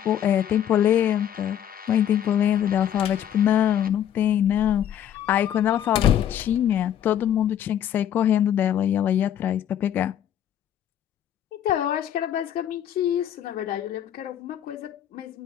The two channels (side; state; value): right; quieter; 10.2 dB